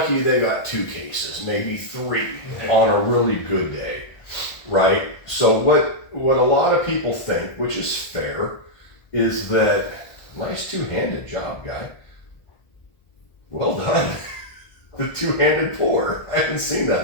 they got 2 cases, maybe 3 on a really good day, right? So what a lot of people think, which is fair, is that nice two-handed job, guy. Well done. The two-handed pour. I haven't seen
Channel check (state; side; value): late; right; 1.4 ms